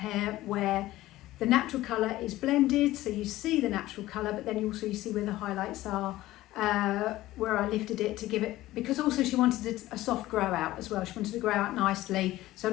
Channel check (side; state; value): right; quieter; 16.2 dB